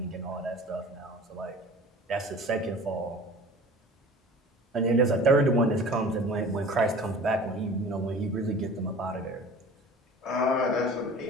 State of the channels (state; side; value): normal; both; correlation 0.42